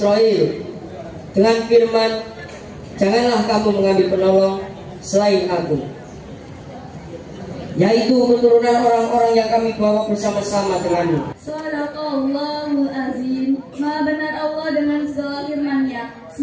dengan firman, janganlah kamu mengambil penolong selain aku, yaitu keturunan orang-orang yang kami bawa bersama-sama denganmu. Shadaqallahul azim. Maha benar Allah dengan segala firman-Nya.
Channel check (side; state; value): both; identical; correlation 1.00